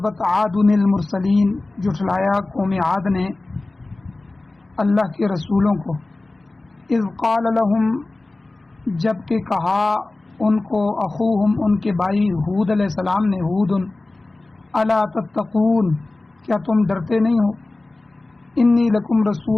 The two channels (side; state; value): right; quieter; 3.0 dB